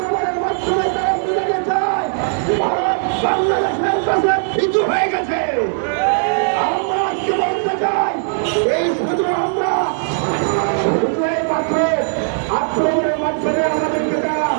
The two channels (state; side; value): silent; left; digital silence